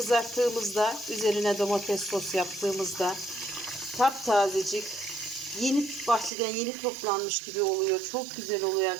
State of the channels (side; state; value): left; drops out; at 6.3 s